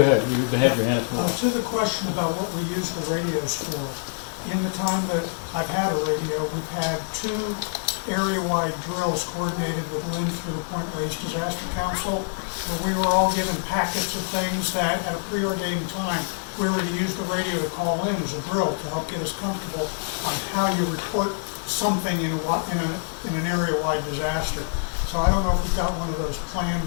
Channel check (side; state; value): right; silent; digital silence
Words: ahead. You had your hand up. To the question about what we use the radios for, in the time that I've had a radio, we've had 2 area-wide drills coordinated with Lynn through the Point Reyes Disaster Council, where we were all given packets of things that at a preordained time we were to use the radio to call in as a drill to help get us comfortable on how you report something in an area-wide disaster. So I don't know if we've got one of those planned